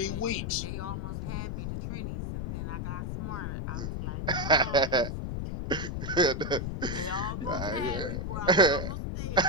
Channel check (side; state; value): left; noise; rumble, 3 dB below the sound